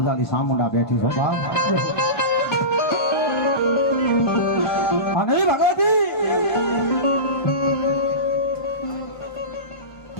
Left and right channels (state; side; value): late; right; 1.5 ms